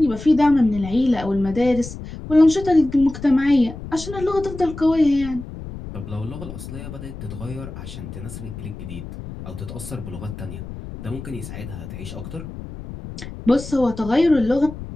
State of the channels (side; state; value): left; noise; rumble, 11 dB below the sound